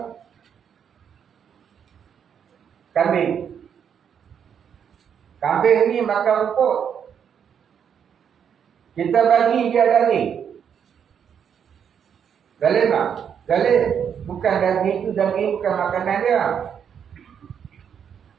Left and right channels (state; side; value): quieter; left; 7.9 dB